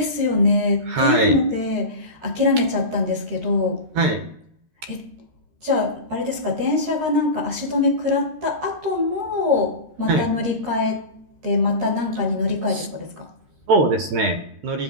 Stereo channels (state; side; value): late; left; 13 ms